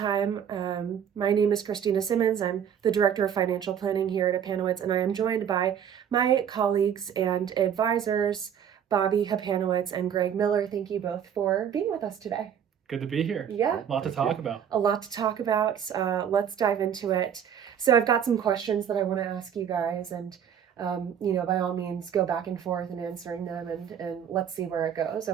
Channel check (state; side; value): quieter; left; 8.7 dB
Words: my name is Christina Simmonds. I'm the Director of Financial Planning here at Hapanowicz, and I am joined by my colleagues and advisors, Bobby Hapanowicz and Greg Miller. Thank you both for being with us today. Good to be here. Yeah. A lot to talk about. A lot to talk about. Let's dive into it. So I've got some questions that I want to ask you guys, and by all means, go back and forth in answering them, and let's see where it goes.